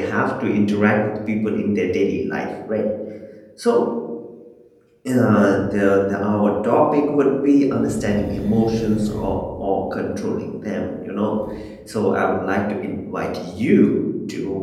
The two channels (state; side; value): identical; both; correlation 1.00